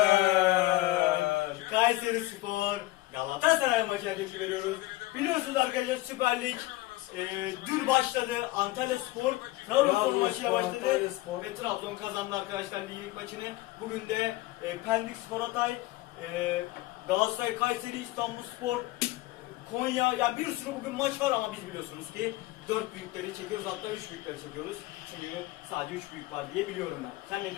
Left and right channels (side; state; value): right; quieter; 19.1 dB